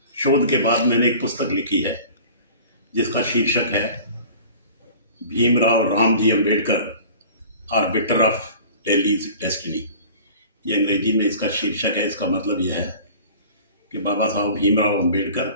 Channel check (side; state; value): both; inverted; correlation -0.43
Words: शोध के बाद मैंने एक पुस्तक लिखी है जिसका शीर्षक है Bhimrao Ramji Ambedkar arbiter of Delhi's destiny. ये अंग्रेजी में इसका शीर्षक है। इसका मतलब यह है कि बाबा साहब भीमराव अंबेडकर